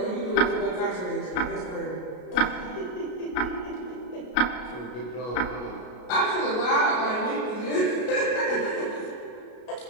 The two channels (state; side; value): late; right; 33 ms